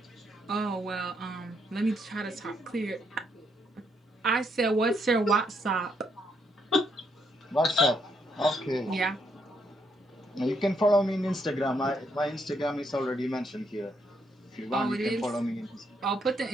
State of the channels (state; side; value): normal; both; correlation 0.75